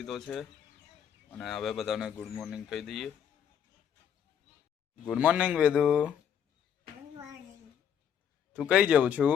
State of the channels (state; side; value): quieter; right; 8.6 dB